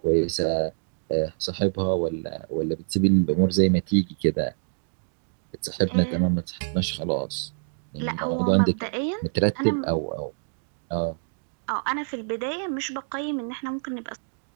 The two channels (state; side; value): silent; left; digital silence